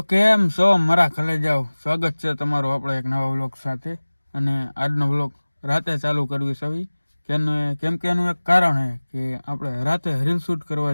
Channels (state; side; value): inverted; both; correlation -1.00